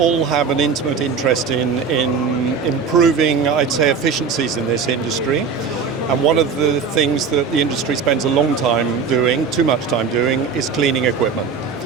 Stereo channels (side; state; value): left; quieter; 5.7 dB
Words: have an intimate interest in improving, I'd say, efficiencies in this industry. And one of the things that the industry spends a long time doing, too much time doing, is cleaning equipment.